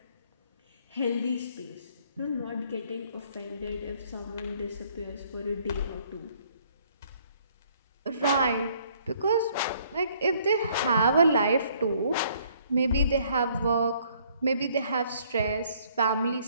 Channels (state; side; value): inverted; both; correlation -0.63